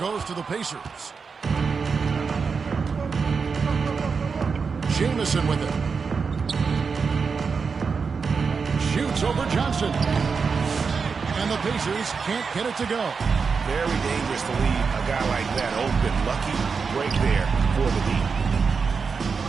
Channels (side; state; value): left; quieter; 5.3 dB